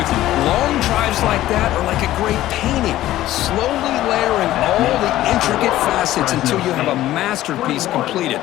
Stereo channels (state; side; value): quieter; right; 14.6 dB